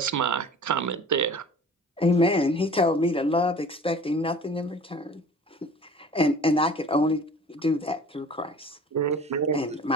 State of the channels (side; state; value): both; normal; correlation 0.44